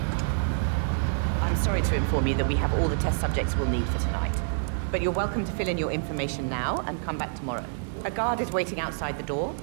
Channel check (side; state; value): left; silent; digital silence